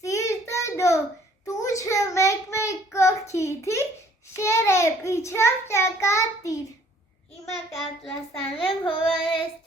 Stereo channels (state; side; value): normal; both; correlation 0.59